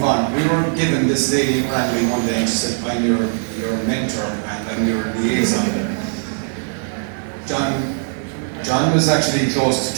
on, we were given this lady randomly one day, and she said, I'm your mentor and I'm your liaison. John was actually close to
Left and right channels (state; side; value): silent; left; 66 dB below the other